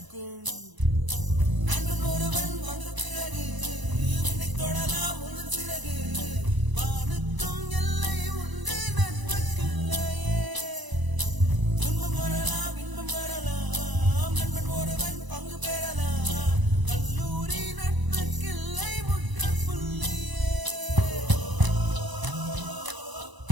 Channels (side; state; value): left; late; 1.0 ms